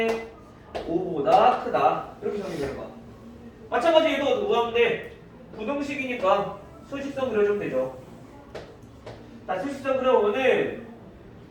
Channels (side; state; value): both; identical; correlation 1.00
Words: 5보다 크다 이렇게 정리되는 거야. 마찬가지 얘도 뭐하는데 부등식이니까 수식선 그려주면 되죠. 자 수식선 그려보면은